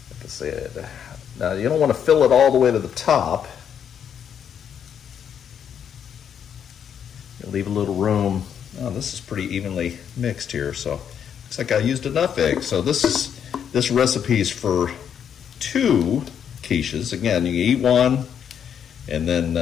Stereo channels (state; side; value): quieter; right; 8.3 dB